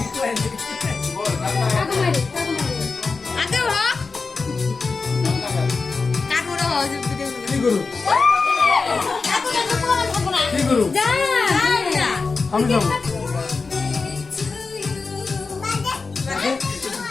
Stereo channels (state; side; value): quieter; right; 4.3 dB